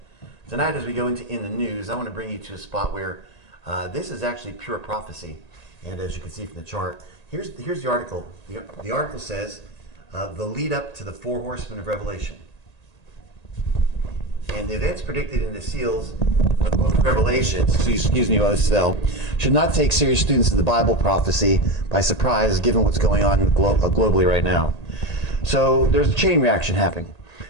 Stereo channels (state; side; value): late; right; 1.8 ms